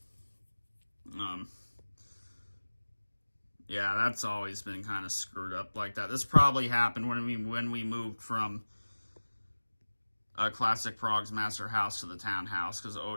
Yeah, that's always been kind of screwed up like that. This probably happened when we moved from Classic Prog's Master House to the townhouse, because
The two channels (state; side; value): inverted; both; correlation -1.00